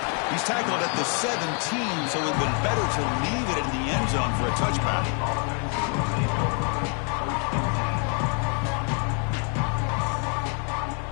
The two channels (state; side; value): quieter; right; 39.3 dB